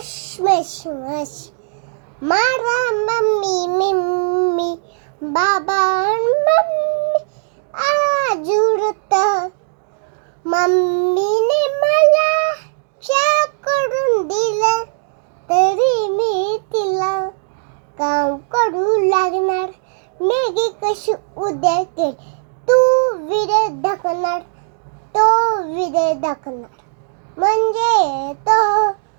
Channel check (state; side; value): silent; left; digital silence